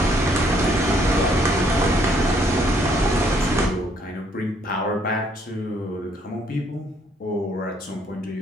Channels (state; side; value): normal; both; correlation 0.67